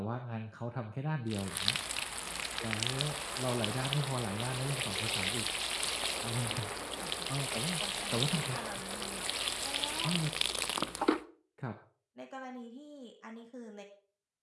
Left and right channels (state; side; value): identical; both; correlation 1.00